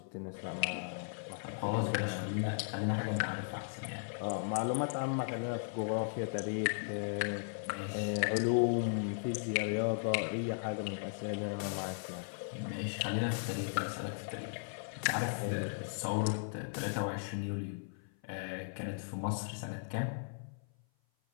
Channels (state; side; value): silent; right; 53 dB below the other